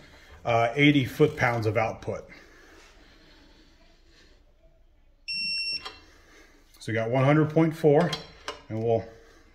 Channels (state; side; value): identical; both; correlation 1.00